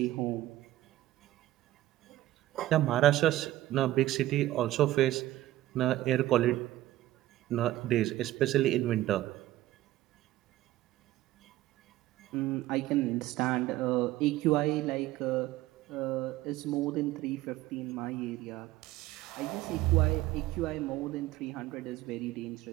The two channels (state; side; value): quieter; left; 15.4 dB